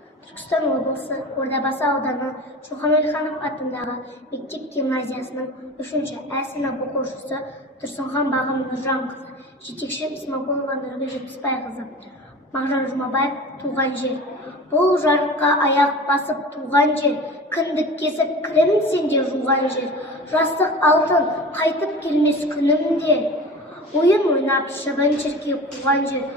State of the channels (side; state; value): both; normal; correlation 0.36